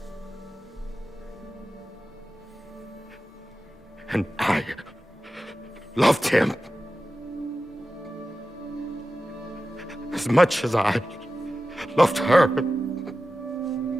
And I loved him. as much as I loved her.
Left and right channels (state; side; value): normal; both; correlation 0.94